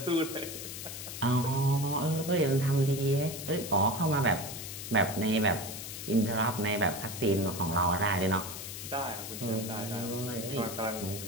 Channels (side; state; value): left; noise; hiss, 8 dB below the sound